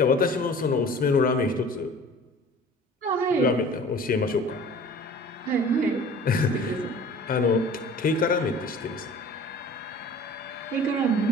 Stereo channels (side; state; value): both; normal; correlation 0.45